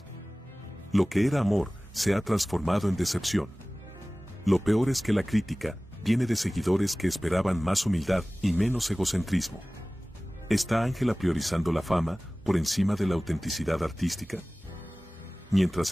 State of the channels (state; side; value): normal; both; correlation 0.98